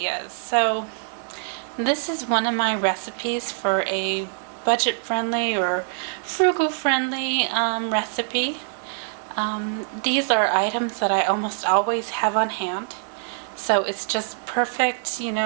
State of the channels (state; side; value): silent; left; digital silence